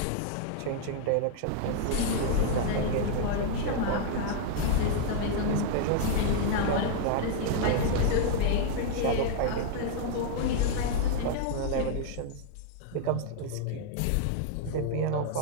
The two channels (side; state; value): both; different; correlation -0.01